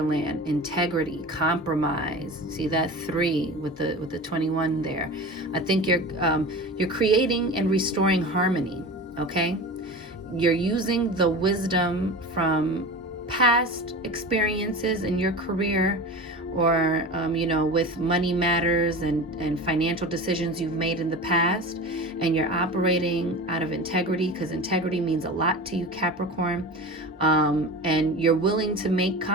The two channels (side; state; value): both; normal; correlation 0.32